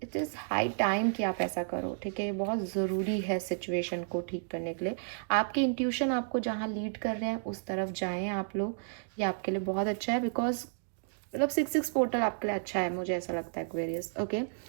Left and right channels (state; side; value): silent; left; digital silence